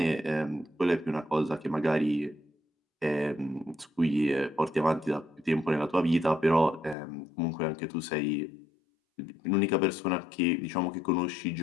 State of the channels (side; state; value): right; drops out; at 7.0 s